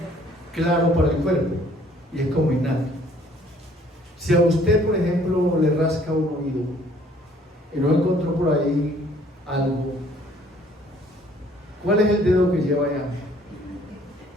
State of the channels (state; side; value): normal; both; correlation 0.59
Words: claro para el cuerpo y es como innato. Si a usted, por ejemplo, le rasca un oído y no encontró por ahí algo, ¿cuál es el dedo que lleva allá?